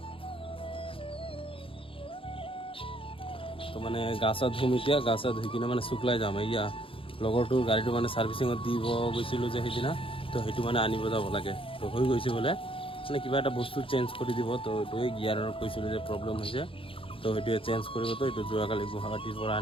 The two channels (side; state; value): right; late; 0.26 ms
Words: তো মানে গা চা ধুম এতিয়া, গা চা ধুই কিনে মানে শুকলাই যাম। এয়া লগৰটোৰ গাড়ীটো মানে ছাৰ্ভিচিঙত দিব গৈছিলোঁ যে সেইদিনা, তো সেইটো মানে আনিব যাব লাগে। তো হৈ গৈছে বোলে, মানে কিবা এটা বস্তু চেঞ্জ কৰি দিব। তো এইটোৱে গিয়াৰৰ কৈছিলোঁ যে প্ৰব্লেম হৈছে, তো সেইটোৱে চেঞ্জ কৰিব। তো এইটো যোৱাকালি গুৱাহাটীৰ পৰা